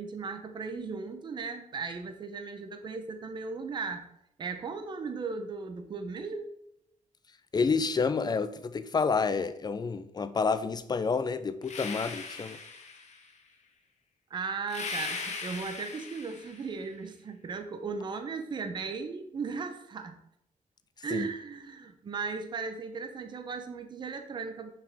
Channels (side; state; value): both; normal; correlation 0.48